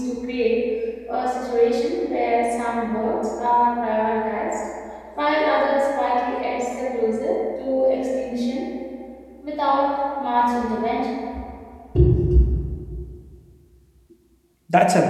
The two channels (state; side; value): identical; both; correlation 1.00